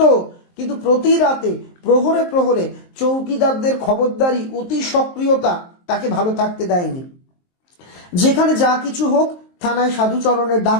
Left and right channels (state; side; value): late; right; 23 ms